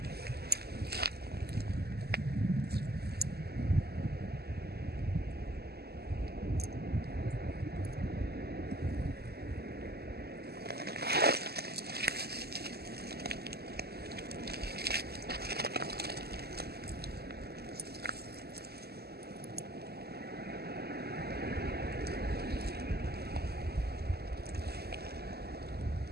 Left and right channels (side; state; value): left; late; 0.46 ms